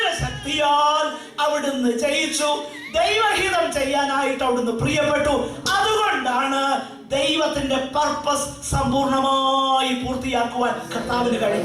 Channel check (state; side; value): identical; both; correlation 1.00